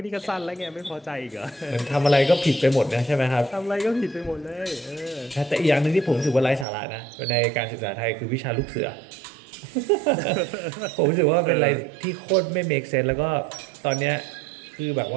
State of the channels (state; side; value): drops out; left; at 6.7 s